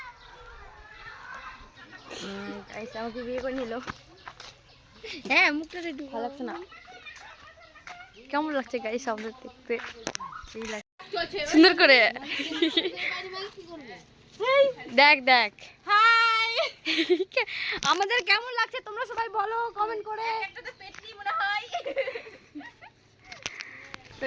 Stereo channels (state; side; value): identical; both; correlation 1.00